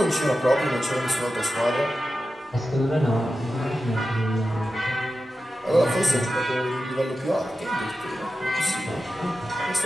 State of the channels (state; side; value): normal; both; correlation 0.92